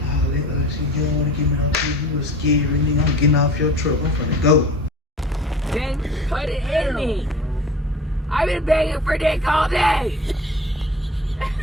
all that other shit, you don't want to give me no shit, you was scared, nigga, I'm getting off your truck, I'm finna go. Then put it in me. I've been begging for dick all day.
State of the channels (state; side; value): normal; both; correlation 0.41